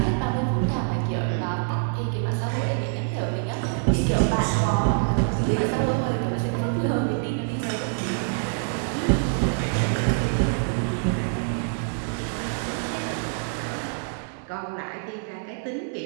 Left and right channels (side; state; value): left; silent; 61 dB below the other